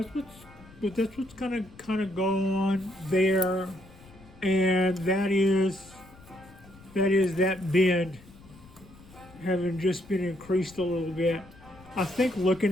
that's what's kind of going on there, and that is that bend having just been increased a little bit. I think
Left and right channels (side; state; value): left; noise; rumble, 22 dB below the sound